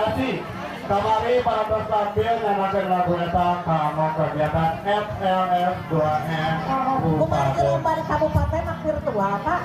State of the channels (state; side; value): identical; both; correlation 1.00